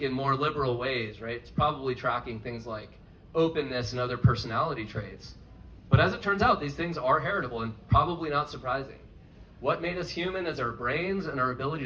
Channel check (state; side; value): identical; both; correlation 1.00